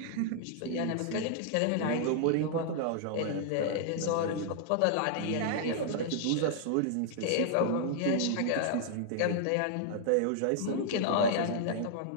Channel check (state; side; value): different; both; correlation -0.01